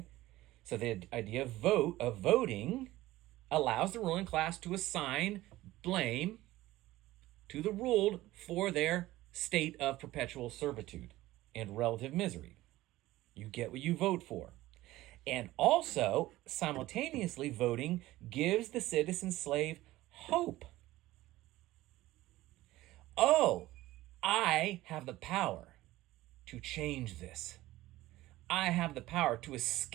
So the idea of voting allows the ruling class to assign blame to the ruled for their state of perpetual servitude and relative misery. You get what you vote for. And also, simultaneously, voting gives the citizen slave hope. Oh, I have the power to change this. I have the power to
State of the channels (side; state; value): left; quieter; 16.8 dB